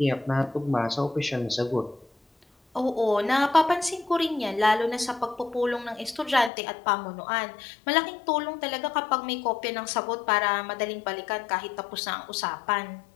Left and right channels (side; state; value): right; drops out; at 6.5 s